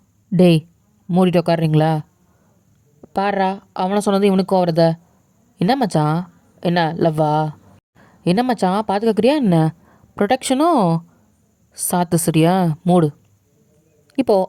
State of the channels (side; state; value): both; identical; correlation 1.00